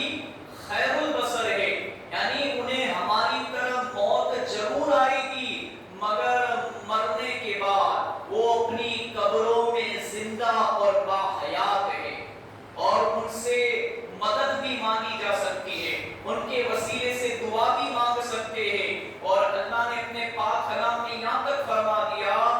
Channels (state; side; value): identical; both; correlation 1.00